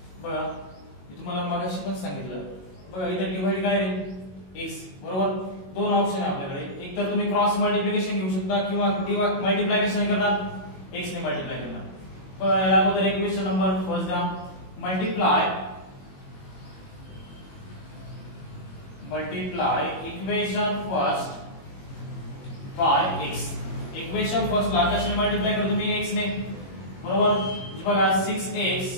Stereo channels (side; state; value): right; late; 22 ms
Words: बघा मी तुम्हाला मागाशी पण सांगितलं. बघा इथे डिवाइड काय रे x बरोबर. दोन ऑप्शन आहे आपल्याकडे. एक तर तुम्ही क्रॉस मल्टिप्लिकेशन घेऊ शकता किंवा मल्टिप्लाय कशाने करणार x ने मल्टिप्लाय करणार. बघा याला अगोदर इक्वेशन नंबर फर्स्ट द्या. Multiply equation first by x. Equation first ला कशाने मल्टिप्लाय करतो मी x ने बरोबर. बघा 6x